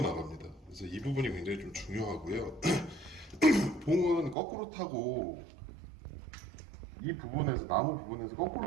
나갑니다. 그래서 이 부분이 굉장히 좀 중요하고요. 봉은 거꾸로 타고 이 부분에서 나무 부분에서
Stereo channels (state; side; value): drops out; left; at 4.4 s